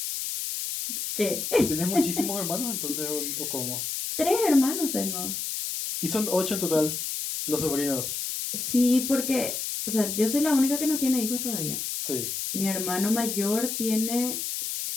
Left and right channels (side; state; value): left; noise; hiss, 3 dB below the sound